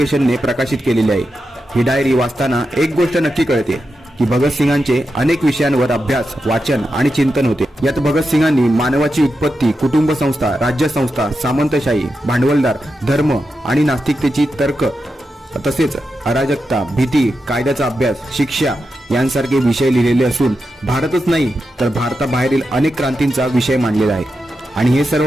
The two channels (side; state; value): both; normal; correlation 0.88